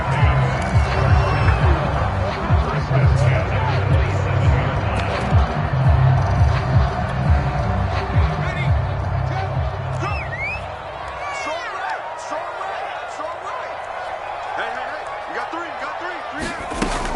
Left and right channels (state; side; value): identical; both; correlation 1.00